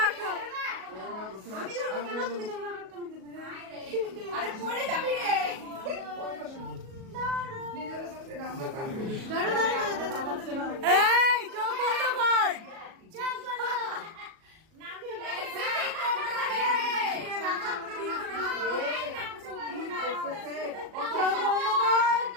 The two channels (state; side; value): late; left; 37 ms